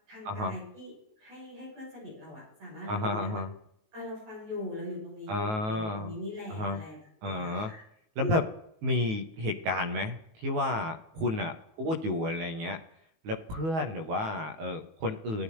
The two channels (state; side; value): late; left; 19 ms